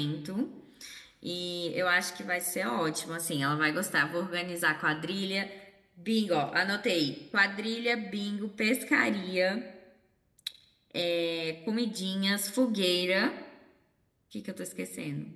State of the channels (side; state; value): both; identical; correlation 1.00